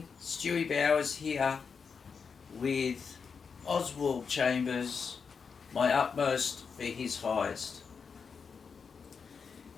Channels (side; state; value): right; quieter; 5.8 dB